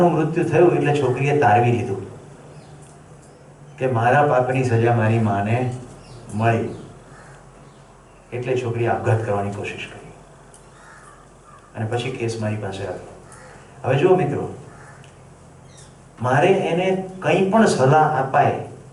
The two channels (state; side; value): identical; both; correlation 1.00